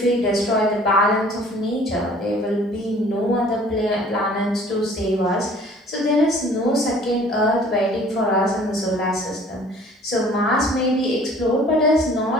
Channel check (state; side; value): normal; both; correlation 0.52